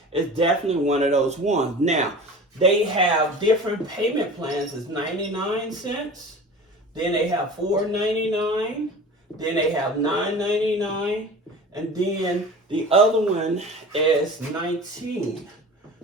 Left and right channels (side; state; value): both; normal; correlation 0.37